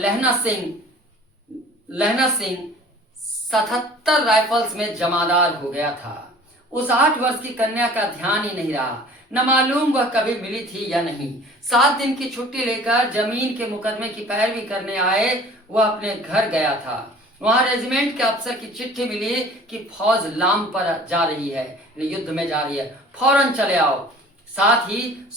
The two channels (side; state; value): both; normal; correlation 0.47